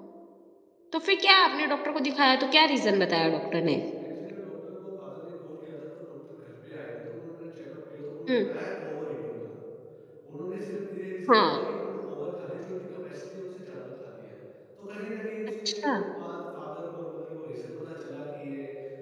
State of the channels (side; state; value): both; identical; correlation 1.00